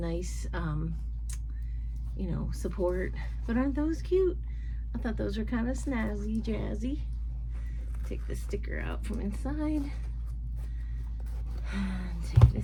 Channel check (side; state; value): both; identical; correlation 1.00